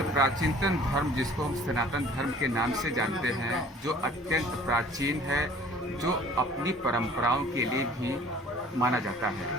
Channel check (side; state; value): both; normal; correlation 0.51